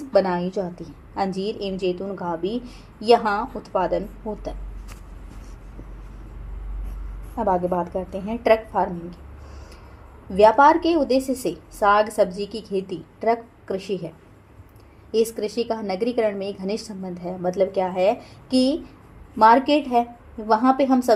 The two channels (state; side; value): identical; both; correlation 1.00